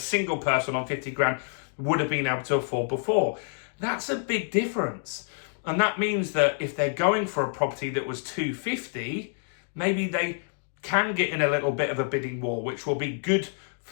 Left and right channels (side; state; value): right; silent; 60 dB below the other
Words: person on 50 grand would have been able to afford before. That's a big difference. And that means that if they're going for a property that was 250, maybe they can get in a little bit of a bidding war, which will be good